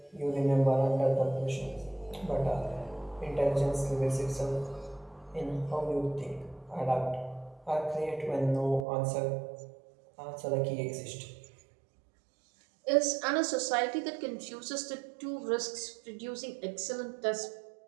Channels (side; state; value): left; drops out; at 8.8 s